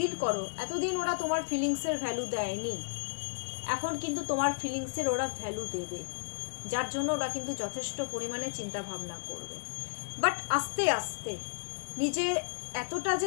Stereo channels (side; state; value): right; silent; digital silence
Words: করো, এতদিন ওরা তোমার ফিলিংসের ভ্যালু দেয়নি, এখন কিন্তু তোমার ফিলিংসের ওরা ভ্যালু দেবে, যার জন্য ওরা কিন্তু যথেষ্ট পরিমাণে চিন্তা ভাবনা করবে। বাট আস্তে আস্তে নিজে এতটা